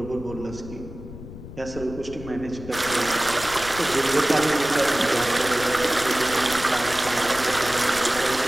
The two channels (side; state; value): left; noise; rumble, 13 dB below the sound